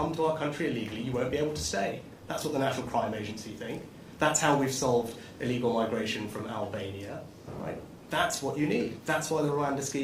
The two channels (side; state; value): both; identical; correlation 1.00